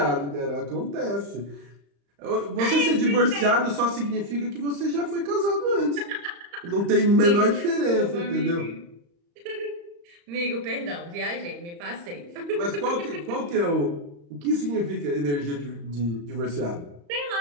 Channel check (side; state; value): left; late; 35 ms